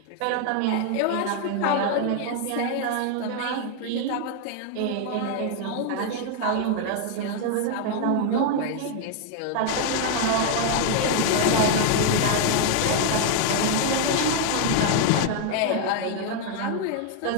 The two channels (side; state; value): both; different; correlation 0.00